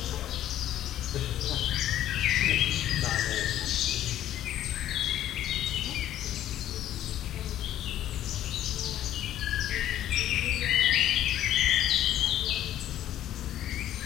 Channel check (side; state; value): right; quieter; 12.2 dB